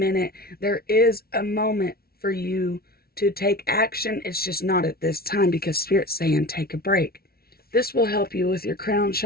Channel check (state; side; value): late; right; 0.44 ms